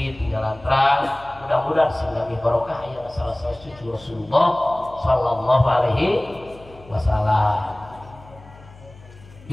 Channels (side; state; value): left; noise; hum, 22 dB below the sound